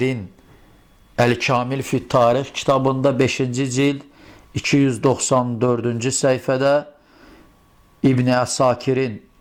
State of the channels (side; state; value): both; identical; correlation 1.00